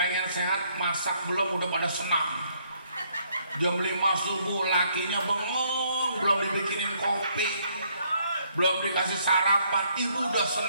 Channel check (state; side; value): inverted; both; correlation -0.69